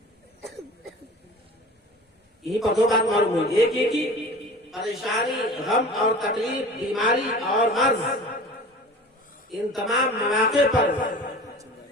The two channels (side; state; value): both; normal; correlation 0.39